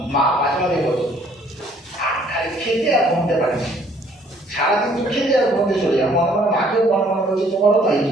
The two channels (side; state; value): both; normal; correlation 0.61